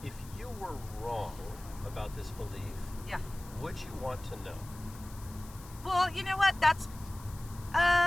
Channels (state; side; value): noise; left; hiss, 19 dB below the sound